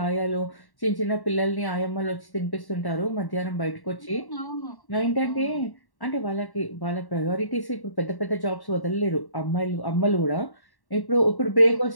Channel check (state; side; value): late; right; 1.1 ms